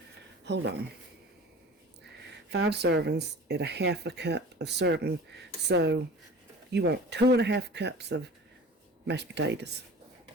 hold on, 5 servings at a half a cup of serving. So you want 2.5 cups of mashed potatoes.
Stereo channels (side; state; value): both; normal; correlation 0.40